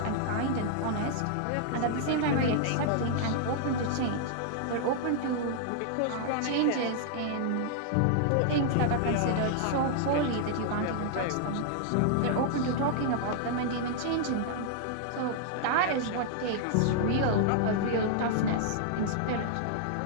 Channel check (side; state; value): both; different; correlation -0.01